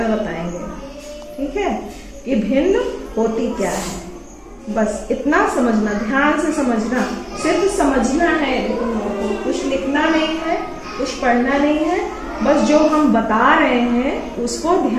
बताएंगे। ठीक है, ये भिन्न होती क्या है, बस इतना समझना, ध्यान से समझना, सिर्फ समझना है। तुम लोगों को कुछ लिखना नहीं है, कुछ पढ़ना नहीं है, बस जो हम बता रहे हैं उसको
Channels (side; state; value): both; identical; correlation 1.00